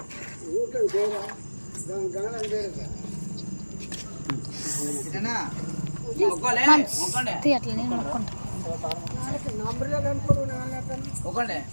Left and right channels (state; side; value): inverted; both; correlation -1.00